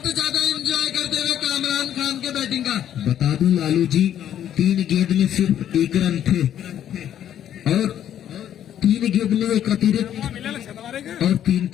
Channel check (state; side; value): quieter; right; 10.6 dB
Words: ज्यादा एंजॉय करते हुए कामरान खान के बैटिंग का। बता दूं लालू जी, 3 गेंद में सिर्फ 1 रन थे और 3 गेंद में एक अतिरिक्त और 3